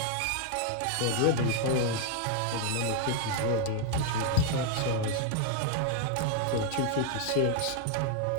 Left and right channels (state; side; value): different; both; correlation 0.00